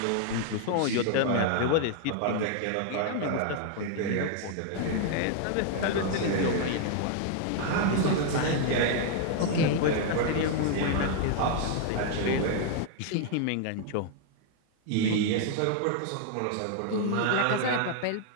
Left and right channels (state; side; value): different; both; correlation 0.00